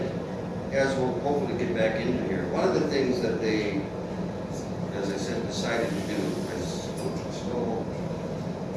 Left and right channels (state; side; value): identical; both; correlation 1.00